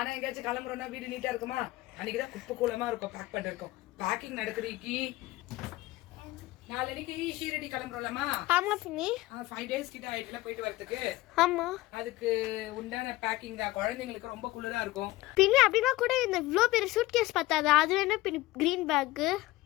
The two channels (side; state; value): right; quieter; 18.4 dB